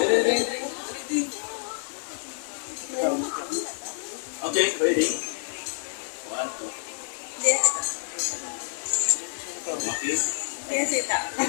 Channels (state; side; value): silent; right; digital silence